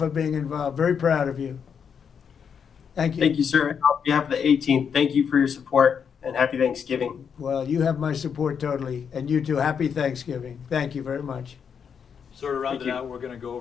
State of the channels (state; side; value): quieter; right; 7.0 dB